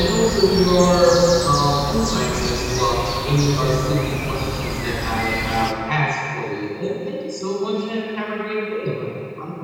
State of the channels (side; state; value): both; identical; correlation 1.00